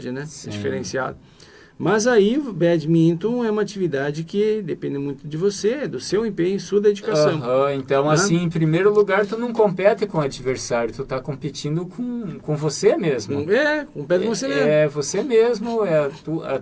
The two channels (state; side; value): identical; both; correlation 1.00